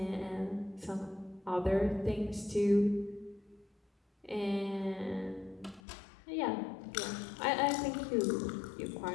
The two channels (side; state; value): right; drops out; at 5.8 s